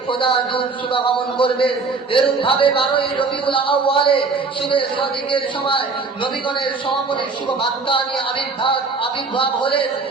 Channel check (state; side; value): quieter; left; 4.3 dB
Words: খোদার দূত শুভাগমন করবে। এরূপ ভাবে 12ই রবিউল আউয়ালে শুভে সাদিকের সময় নবীগণের সমাপনের শুভ বার্তা নিয়ে আবির্ভাব হলেন